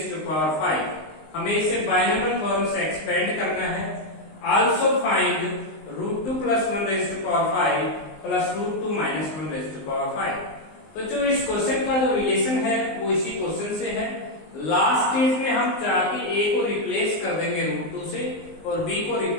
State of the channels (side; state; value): right; late; 19 ms